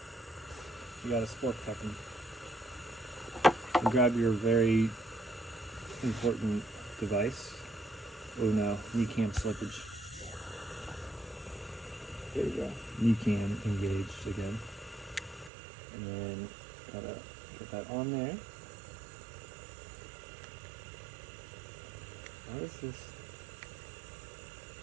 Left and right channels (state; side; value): drops out; left; at 15.5 s